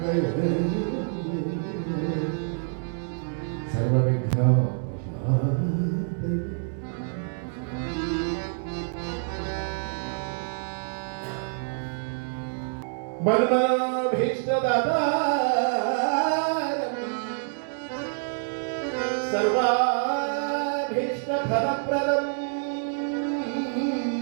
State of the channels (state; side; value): silent; left; digital silence